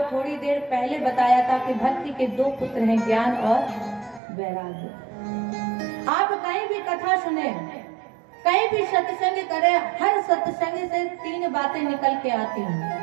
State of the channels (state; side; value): drops out; left; at 4.2 s